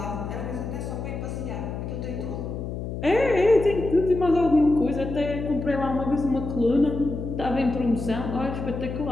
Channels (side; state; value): left; noise; hum, 6 dB below the sound